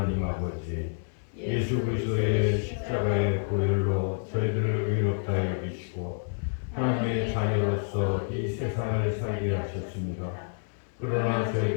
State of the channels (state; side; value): silent; right; 59 dB below the other